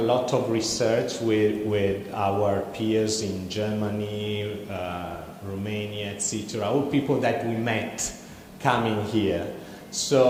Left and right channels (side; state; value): both; identical; correlation 1.00